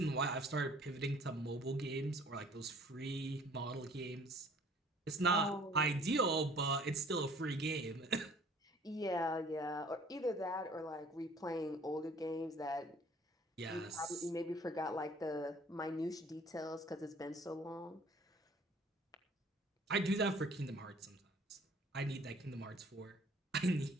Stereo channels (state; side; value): normal; both; correlation 0.54